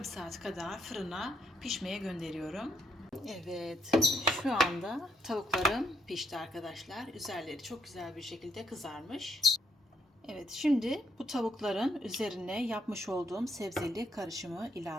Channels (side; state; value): both; normal; correlation 0.73